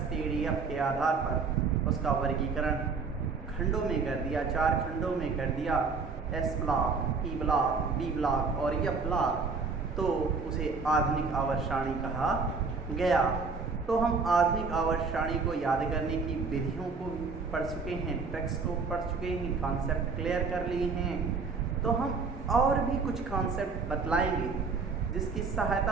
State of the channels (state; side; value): quieter; left; 4.7 dB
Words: के आधार पर उसका वर्गीकरण खंडों में कर दिया, 4 खंडों में कर दिया, S block, P block, B block और F ब्लॉक, तो उसे आधुनिक आवर्त सारणी कहा गया। तो हम आधुनिक आवर्त सारणी को याद करने की विधियों को पढ़ चुके हैं, ट्रिक्स को पढ़ चुके हैं, कॉन्सेप्ट क्लियर कर लिए हैं। तो हम और भी कुछ कॉन्सेप्ट बतलाएंगे जिसकी